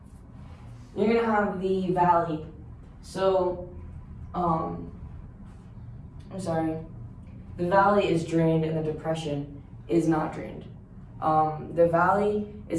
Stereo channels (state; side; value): identical; both; correlation 1.00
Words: You're gonna have the valley. So, the valley is drained and the depression is not drained. The valley